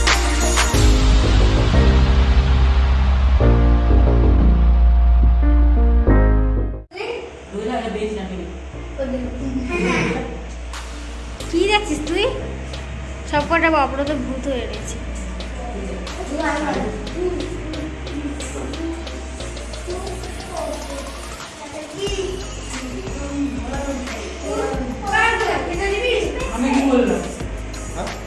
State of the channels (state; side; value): identical; both; correlation 1.00